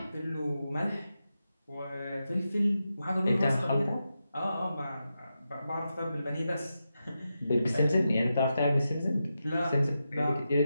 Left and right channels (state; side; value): inverted; both; correlation -0.89